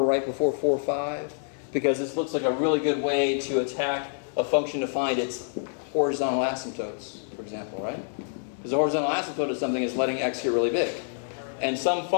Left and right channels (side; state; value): right; silent; digital silence